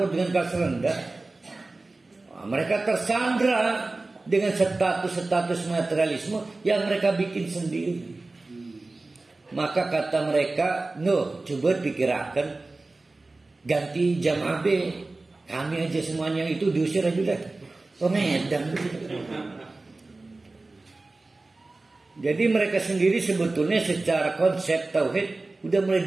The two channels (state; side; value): quieter; left; 3.2 dB